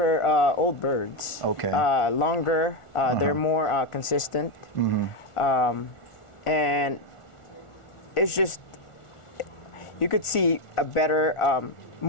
old birds. Okay. Longer, they're more consistent. And it's just, you could see a better,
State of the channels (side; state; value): right; late; 1.4 ms